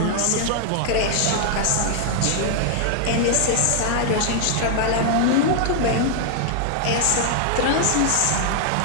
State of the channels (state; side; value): different; both; correlation 0.00